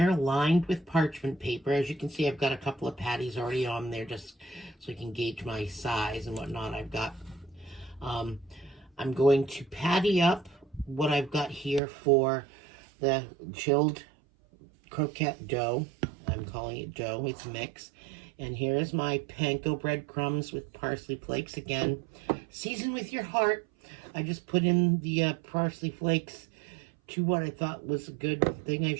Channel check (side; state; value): left; drops out; at 11.8 s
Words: lined with parchment paper. As you can see, I've got a couple of patties already on there just so I can gauge my size and whatnot. I've got, I'm going to patty up what I've got here for the chilled croquette dough. I'm calling it dough, it's mix. And here's my panko breadcrumbs with parsley flakes. Again, season with your heart. I just put in the parsley flakes to what I thought was a good thing. I